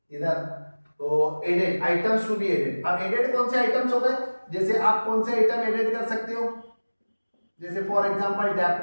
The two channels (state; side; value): inverted; both; correlation -1.00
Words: इधर, तो added items to be added. अब एडेड कौन से आइटम्स हो गए? जैसे आप कौन से आइटम एडेड कर सकते हो? जैसे for example